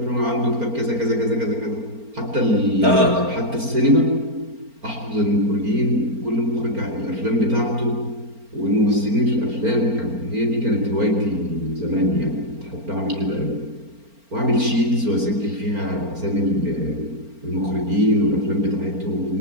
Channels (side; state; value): left; late; 4.4 ms